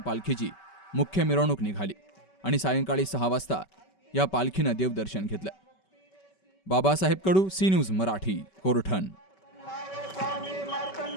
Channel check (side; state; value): right; late; 5.2 ms